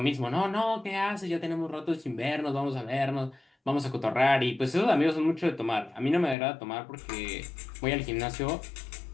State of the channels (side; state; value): right; drops out; at 6.4 s